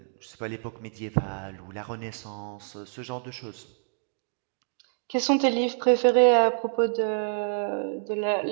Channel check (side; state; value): left; silent; digital silence